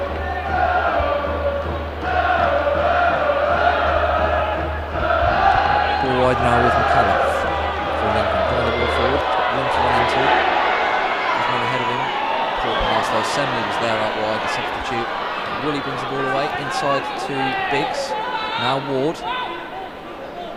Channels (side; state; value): both; identical; correlation 1.00